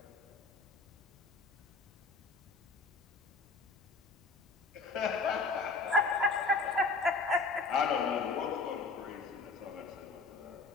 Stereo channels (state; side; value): quieter; right; 3.8 dB